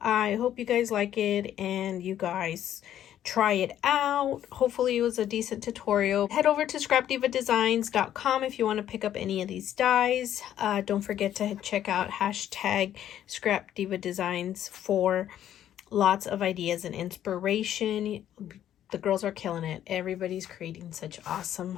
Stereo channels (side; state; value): right; quieter; 11.1 dB